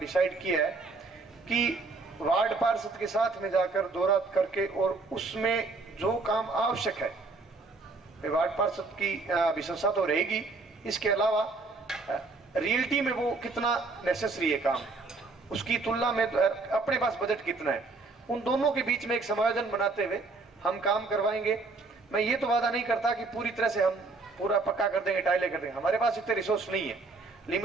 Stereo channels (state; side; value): quieter; left; 3.7 dB